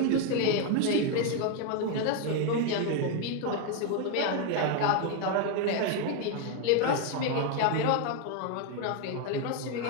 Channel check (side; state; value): both; different; correlation 0.01